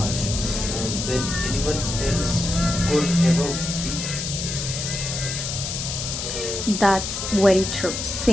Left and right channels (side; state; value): left; noise; hiss, 4 dB below the sound